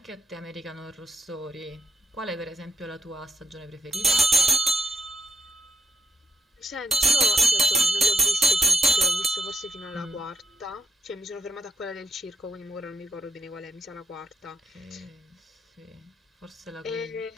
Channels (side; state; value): both; normal; correlation 0.77